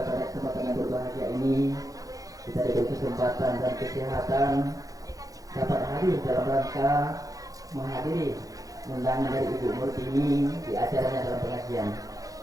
pada kesempatan yang berbahagia ini kita diberi kesempatan dan kesehatan dapat hadir dalam rangka menghadiri undangan dari Ibu Murtini di acaranya dalam pengajian.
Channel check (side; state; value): left; late; 0.17 ms